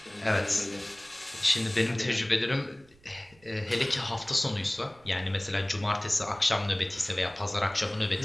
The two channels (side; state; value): right; noise; rumble, 29 dB below the sound